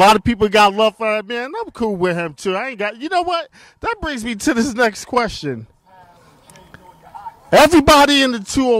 of people got love for that man. I'm cool with him too. You know what? That brings me to this next question. Everybody in the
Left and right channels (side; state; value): both; identical; correlation 1.00